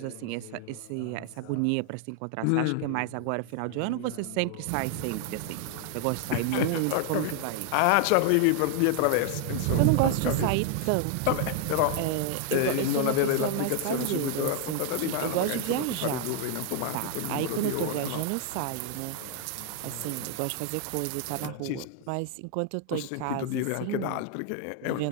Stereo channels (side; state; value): both; different; correlation 0.00